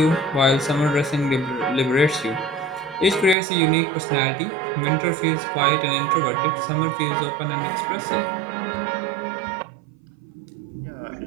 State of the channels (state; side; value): drops out; left; at 3.4 s